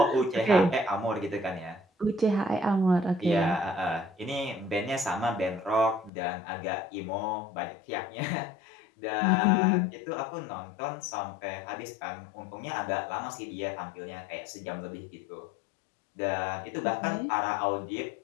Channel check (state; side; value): drops out; right; at 6.1 s